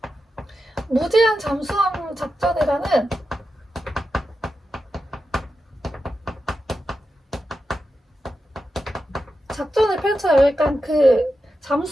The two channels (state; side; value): normal; both; correlation 0.90